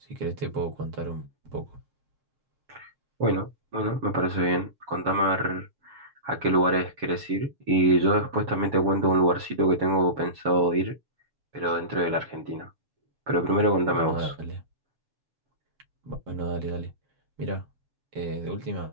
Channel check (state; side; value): late; left; 7.1 ms